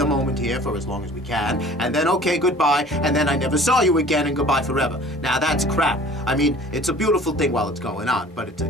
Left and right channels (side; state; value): both; normal; correlation 0.47